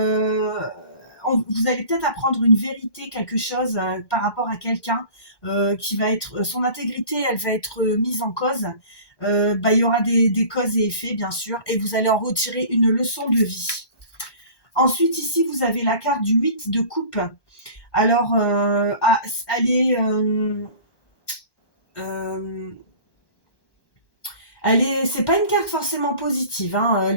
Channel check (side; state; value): right; late; 1.1 ms